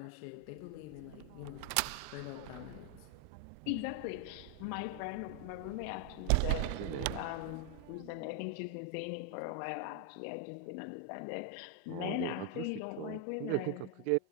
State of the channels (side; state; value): both; different; correlation 0.01